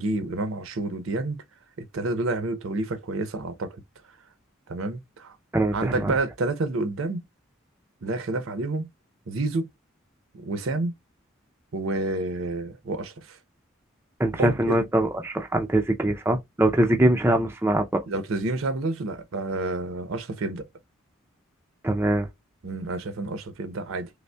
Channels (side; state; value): both; normal; correlation 0.60